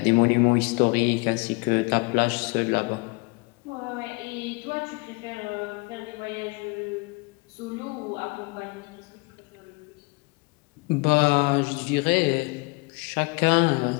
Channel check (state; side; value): quieter; right; 27.5 dB